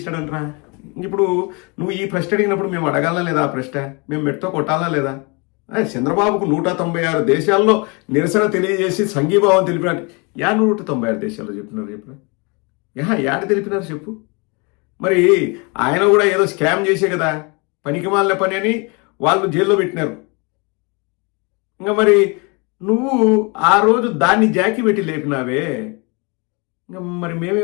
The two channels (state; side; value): quieter; right; 30.5 dB